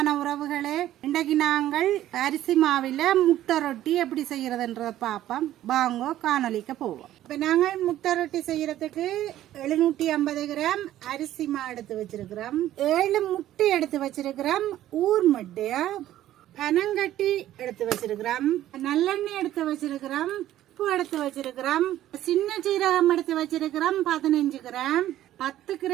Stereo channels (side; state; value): left; quieter; 13.2 dB